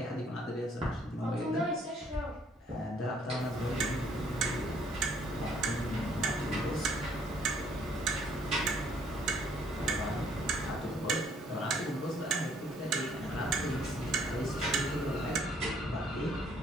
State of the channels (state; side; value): normal; both; correlation 0.63